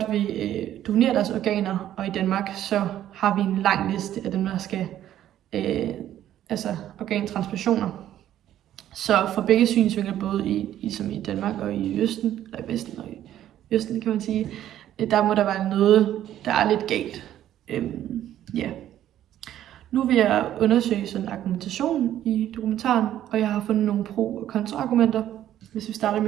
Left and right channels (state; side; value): quieter; left; 11.9 dB